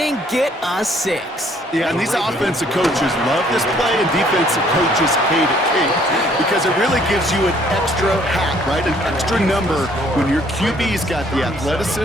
get us 6. Yeah, and these offensive coaches love this play, and defensive coaches hate it, Kate, because it really gives you an extra hat, right? An extra number when your QB's got the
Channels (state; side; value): normal; both; correlation 0.62